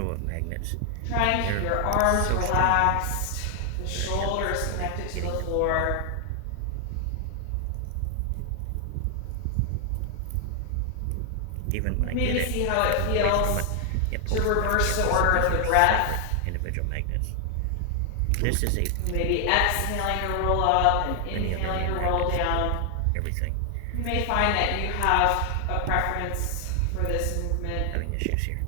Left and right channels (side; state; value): both; different; correlation 0.00